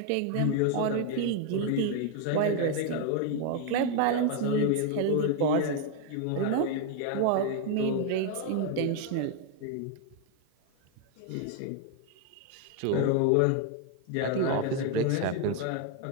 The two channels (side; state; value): both; different; correlation 0.01